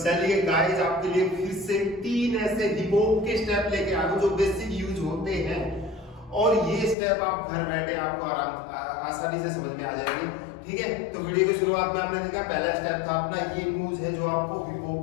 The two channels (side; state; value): right; drops out; at 7.0 s